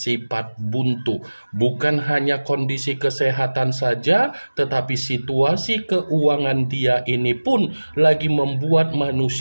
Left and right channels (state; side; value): inverted; both; correlation -1.00